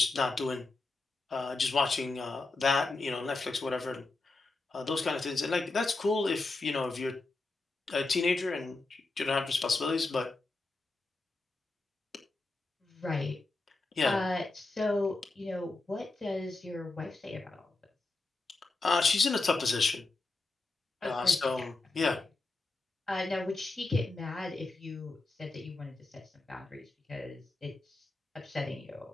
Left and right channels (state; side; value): quieter; right; 3.3 dB